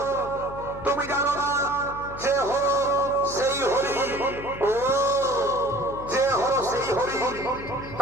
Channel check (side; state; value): left; noise; hum, 13 dB below the sound